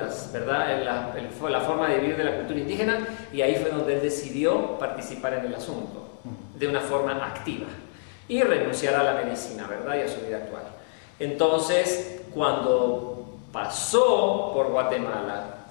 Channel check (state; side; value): silent; right; 60 dB below the other